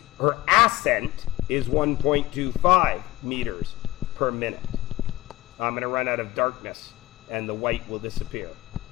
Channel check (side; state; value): right; quieter; 16.6 dB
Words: her ascent is 1.25 meters per minute. I'm going to run out of darkness and the white will disappear.